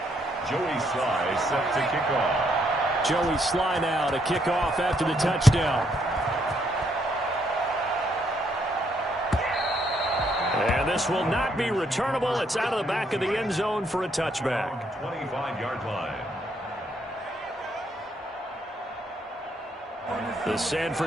Joey Sly set to kick off. Joey Sly now to kick off after the touchdown. And this will not be returnable. It's out of the back of the end zone for a touchback. 25-yard line. The San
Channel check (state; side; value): normal; both; correlation 0.73